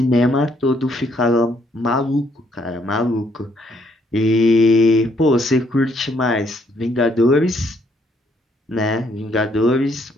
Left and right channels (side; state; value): both; normal; correlation 0.69